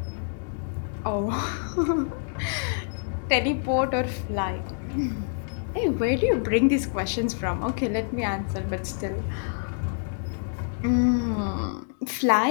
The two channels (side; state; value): right; silent; digital silence